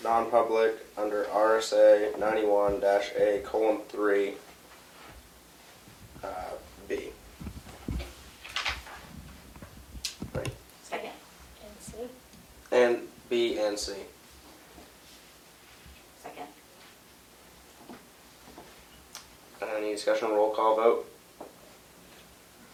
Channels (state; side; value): identical; both; correlation 1.00